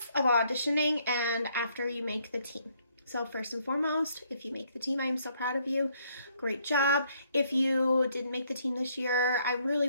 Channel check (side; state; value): both; inverted; correlation -0.68